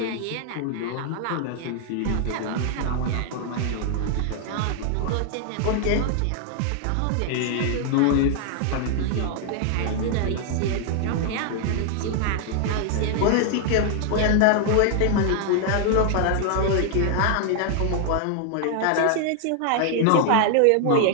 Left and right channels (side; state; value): both; different; correlation 0.00